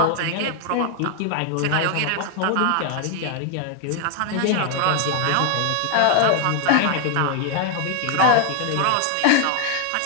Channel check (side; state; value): both; different; correlation 0.00